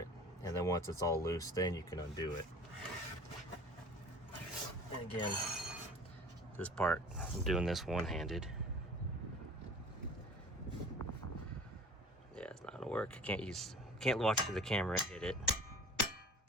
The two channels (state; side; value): normal; both; correlation 0.44